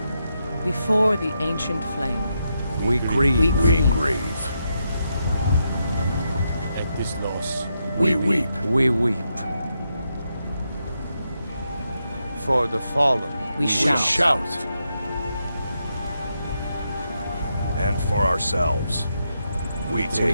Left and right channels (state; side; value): inverted; both; correlation -0.83